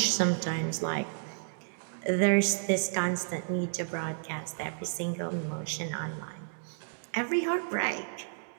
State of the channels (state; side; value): silent; left; digital silence